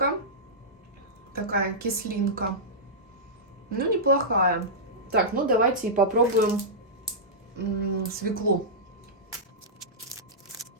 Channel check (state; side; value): normal; both; correlation -0.13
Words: Такая кислинка. Ну, неплохая. Так, ну давайте и попробуем свеклу.